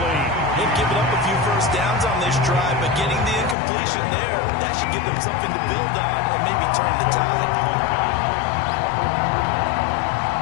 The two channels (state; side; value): drops out; right; at 3.6 s